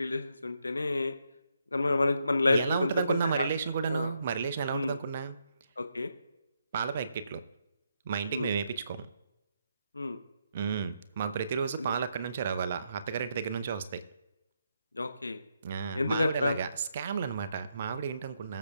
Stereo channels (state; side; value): inverted; both; correlation -0.78